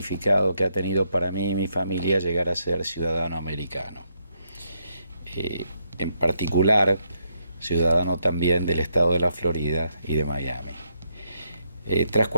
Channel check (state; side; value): inverted; both; correlation -0.77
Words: que ha tenido para mí y mi familia llegar a ser ciudadano americano. En particular, ciudadano también del estado de la Florida y de Miami. Tras